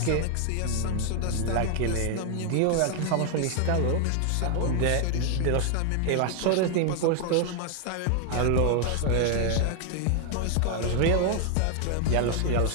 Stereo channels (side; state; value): both; different; correlation 0.00